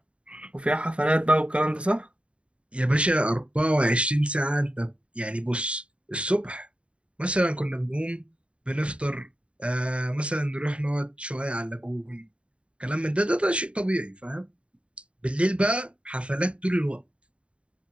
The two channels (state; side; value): late; left; 0.059 ms